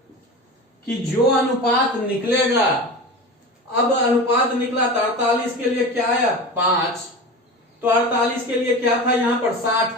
कि जो अनुपात निकलेगा, अब अनुपात निकला तो 48 के लिए क्या आया 5, तो 48 के लिए क्या था यहाँ पर 60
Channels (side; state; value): both; normal; correlation 0.30